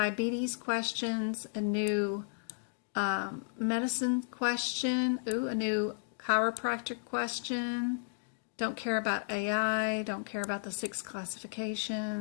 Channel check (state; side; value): silent; right; digital silence